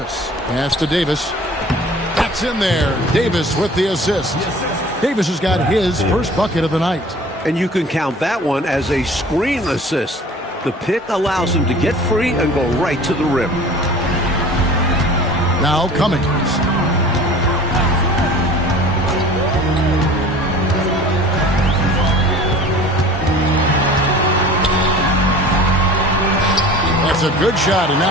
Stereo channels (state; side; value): normal; both; correlation 0.44